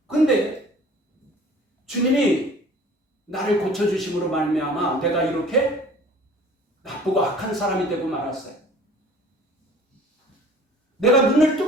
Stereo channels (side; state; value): both; normal; correlation 0.48